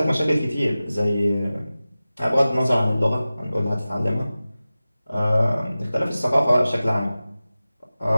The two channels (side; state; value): both; inverted; correlation -0.96